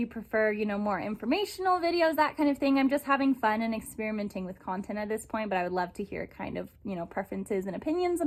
prefer, more informational videos, that kind of thing. I'm just having fun and experimenting with content at this point, but I would love to hear kind of, preferences and opinions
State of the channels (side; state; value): both; identical; correlation 1.00